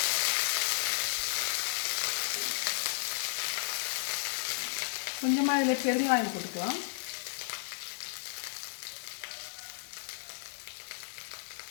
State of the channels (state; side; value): silent; right; digital silence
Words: கொஞ்சமாக இதில் பெருங்காயம் போட்டுக்கலாம்.